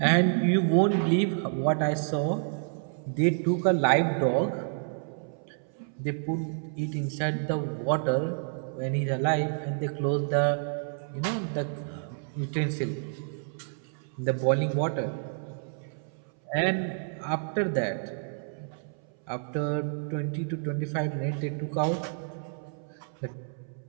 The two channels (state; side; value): silent; left; 58 dB below the other